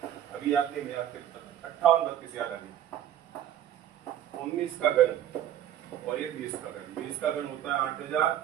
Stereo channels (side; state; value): left; quieter; 11.2 dB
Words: अभी याद नहीं, मैं याद करता हूँ, 58 32 याद आ गया। 19 का घन और ये 20 का घन, 20 का घन होता है 8000,